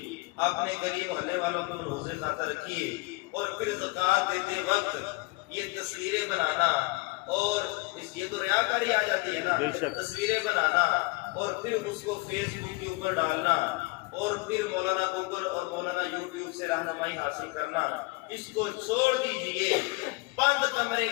اپنے گلی محلے والوں کو ملحوظ خاطر رکھیے، اور پھر زکوٰۃ دیتے وقت یہ تصویریں بنانا، اور یہ تو ریاکاری آ جاتی ہے نا، تصویریں بنانا اور پھر اس کو فیس بک کے اوپر ڈالنا، اور پھر مولانا گوگل اور مولانا یوٹیوب سے رہنمائی حاصل کرنا، اس کو چھوڑ دیجئے، بند کمرے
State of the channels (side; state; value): right; quieter; 25.3 dB